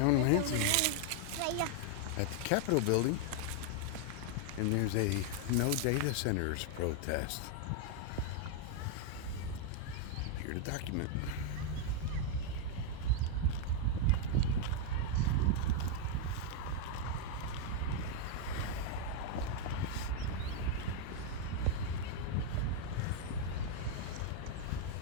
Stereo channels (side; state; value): both; different; correlation 0.00